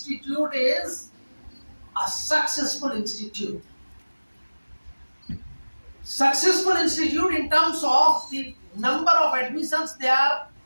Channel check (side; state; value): both; inverted; correlation -1.00